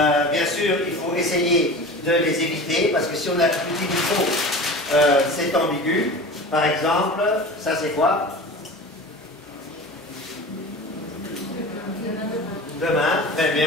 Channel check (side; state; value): both; normal; correlation 0.35